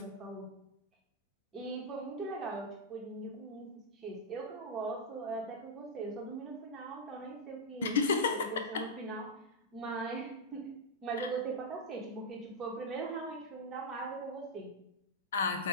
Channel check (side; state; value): both; normal; correlation -0.06